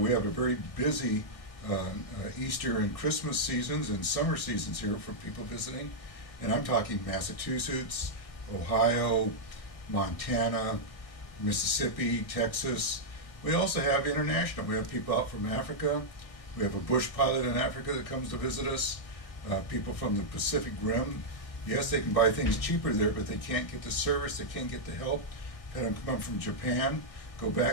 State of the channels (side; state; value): right; late; 1.6 ms